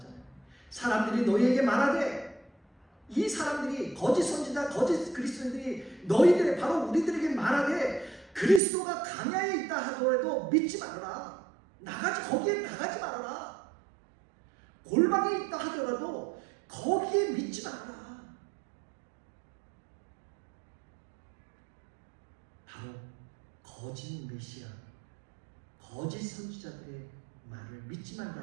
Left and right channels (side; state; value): left; drops out; at 8.6 s